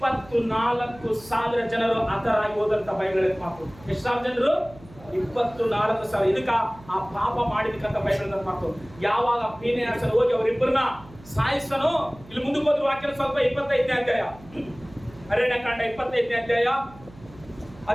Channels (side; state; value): right; noise; hum, 22 dB below the sound